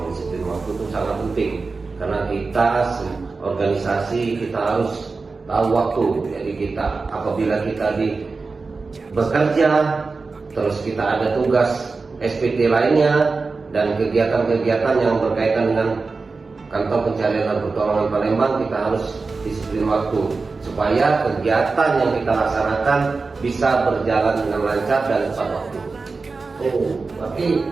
disiplin waktu itu sangat penting karena kita organisasi kita harus tahu waktu. Jadi kita apabila kita bekerja, terus kita ada tugas SPT lainnya dan kegiatan-kegiatan yang berkaitan dengan kantor pencarian dan pertolongan Palembang, kita harus disiplin waktu supaya kegiatan yang kita laksanakan bisa berjalan dengan lancar dan tepat waktu. Oh, berarti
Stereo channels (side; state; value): left; quieter; 4.1 dB